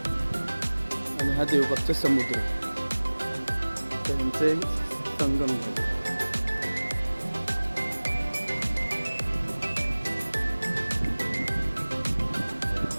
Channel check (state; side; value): inverted; both; correlation -1.00